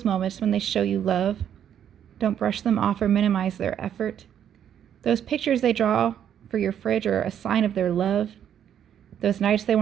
moments when they show you love. Don't brush them off or minimize their effort. Those pictures they draw for your fridge are a sign of their love. Those nights they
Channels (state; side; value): quieter; left; 9.5 dB